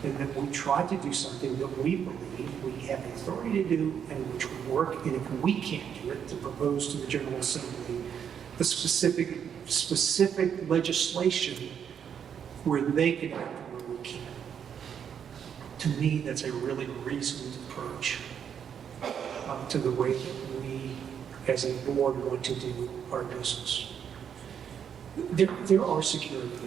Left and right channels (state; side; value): quieter; left; 8.1 dB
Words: and that we try to do something that we believe we have the authority to do and which would work, and if we can't do it, to propose to the General Assembly the specific legislation where they can act where we can't. To me, that's a really reasoned approach to the way that we, as a board, want to do our business. There are security